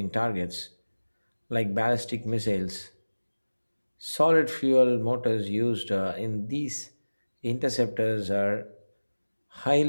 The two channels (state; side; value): inverted; both; correlation -1.00